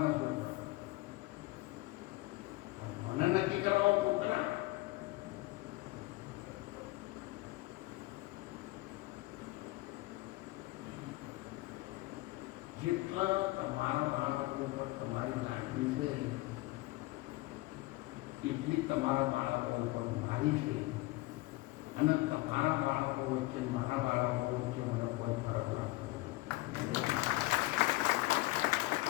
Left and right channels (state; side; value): quieter; right; 20.2 dB